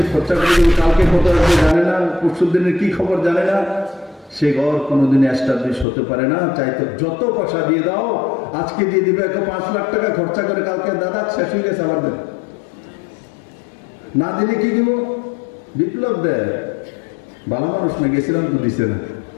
257. খরচা করে দেবে, কালকে কত আসবে জানে না, পরশুর দিনের কি খবর জানে না, সে ঘর কোনোদিন এস্টাবলিশ হতে পারে না। চাইতো যত পয়সা দিয়ে দাও, আজকে দিয়ে দিবে 5 লাখ টাকা খরচা করে, কালকে দাদা শেষ হয়ে গেছে আবার দেন, না দিলে কি দিব? বিপ্লব দেয়, ভালো মানুষ না, গেছিলাম তো দিছে না,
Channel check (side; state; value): right; drops out; at 5.9 s